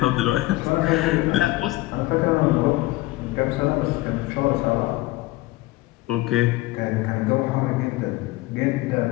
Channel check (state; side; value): quieter; right; 19.1 dB